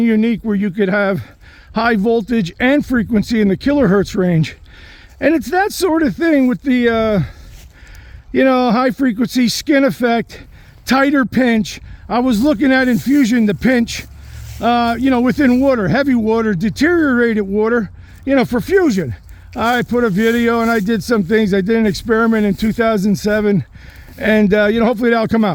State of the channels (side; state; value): both; identical; correlation 1.00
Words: where you could have high voltage and frequency in the kilohertz range. And it's that sort of thing with the, high frequency skin effect, tighter pinch. I was looking at infusion, the pinch, within water, heavy water, deteriorated water, for fusion. I put a video and I did some things. I did an experiment in 2007 and, hopefully that'll come